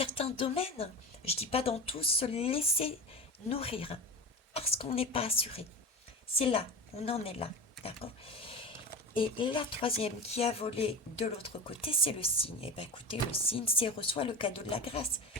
domaines, je dis pas dans tous, se laisser nourrir. Parce qu'on n'est pas assuré. C'est là, on en est là. D'accord? Et la troisième qui a volé de l'autre côté, c'est le signe. Eh bien écoutez, le signe, c'est reçoit le cadeau de la grâce.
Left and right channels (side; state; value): both; normal; correlation 0.27